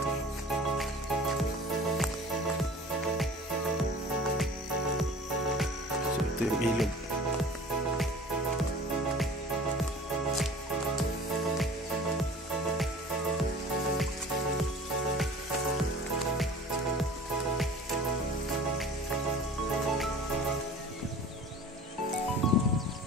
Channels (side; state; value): both; normal; correlation 0.43